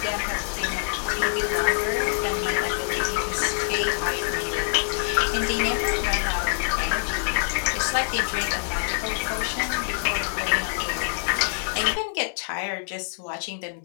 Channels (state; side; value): silent; right; 61 dB below the other